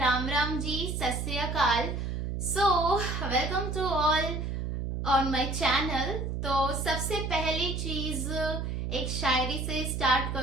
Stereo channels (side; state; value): right; noise; hum, 3 dB below the sound